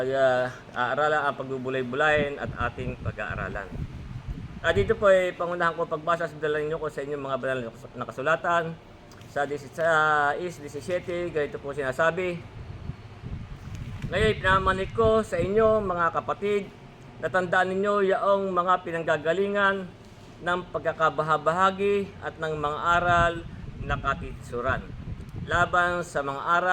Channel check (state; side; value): identical; both; correlation 1.00